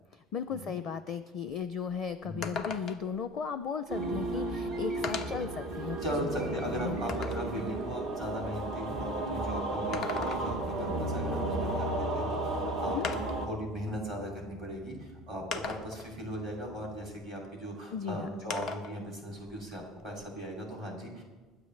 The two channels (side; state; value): both; normal; correlation 0.38